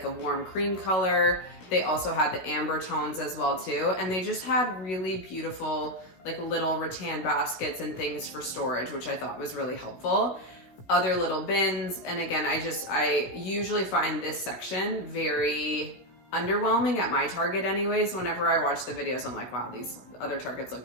a warm cream color. They also had the amber tones as well too. And they just had really beautiful, like little rattan baskets and things for storage, which I thought was really helpful. Other little bins. And again, I usually find this section very underwhelming at my Target anyways. Whenever I watch the videos, I'm like, wow, these other Targets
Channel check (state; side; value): late; right; 16 ms